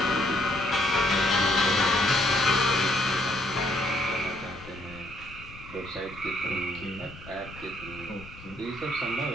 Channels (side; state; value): left; noise; rumble, 18 dB below the sound